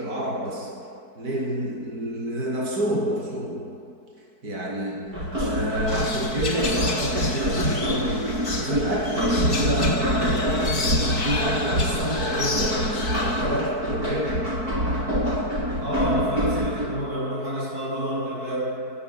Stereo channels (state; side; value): late; left; 4.6 ms